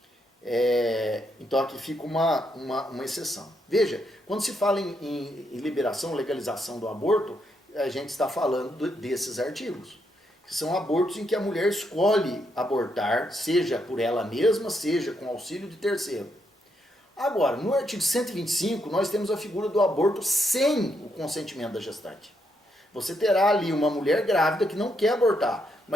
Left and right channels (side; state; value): both; normal; correlation 0.78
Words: Então aqui fica uma exceção. Veja, quando se fala em liberação, legalização do aborto, a gente está falando desses artigos, que são abortos em que a mulher escolhe abortar, seja por ela mesma, seja com auxílio de terceiro. Agora, no artigo 125, nós temos a figura do aborto sem o consentimento da gestante. Você terá ali uma mulher grávida que não quer abortar,